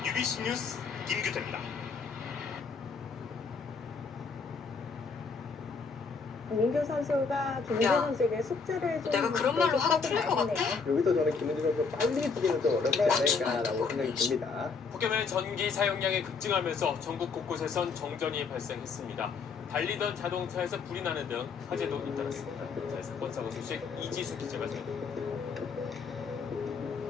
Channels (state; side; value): quieter; right; 5.0 dB